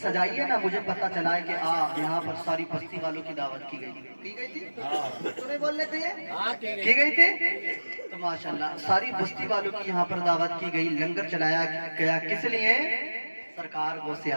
सजाई है ना, मुझे पता चला है कि यहाँ पर सारी बस्ती वालों की दावत की गई थी। तो नहीं बोलने थे ये की गई थी? तो माशाल्लाह सारी बस्ती वालों की यहाँ पर दावत की गई, लंगर चलाया गया। किस लिए? सरकार गौसे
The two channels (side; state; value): both; inverted; correlation -1.00